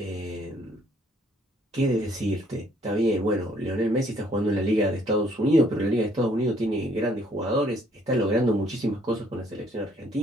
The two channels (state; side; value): normal; both; correlation 0.64